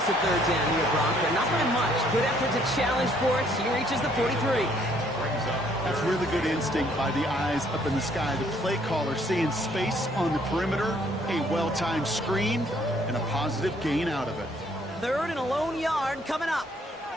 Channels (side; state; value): both; normal; correlation 0.64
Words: a 3rd down here, Brock, but not by much. Good effort to challenge for it. He reaches the 43. That's really good instinct by the eyes up in the sky. The play caller seeing space on the perimeter, a well-timed screen, and a positive gain out of it. 3rd and a lone yard coming up.